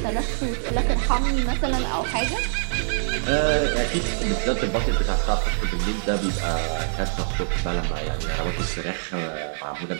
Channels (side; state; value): left; silent; digital silence